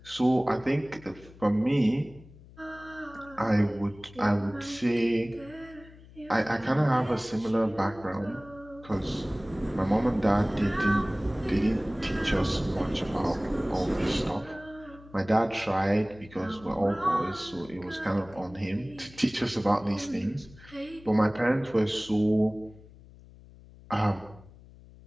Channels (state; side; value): noise; left; hum, 21 dB below the sound